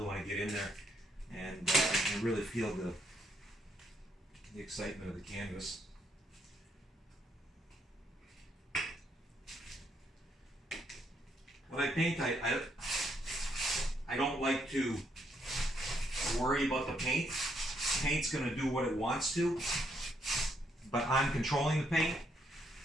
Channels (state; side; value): normal; both; correlation 0.73